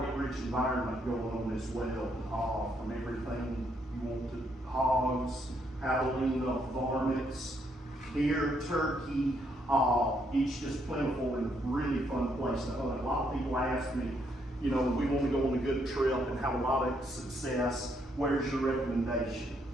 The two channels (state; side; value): normal; both; correlation 0.74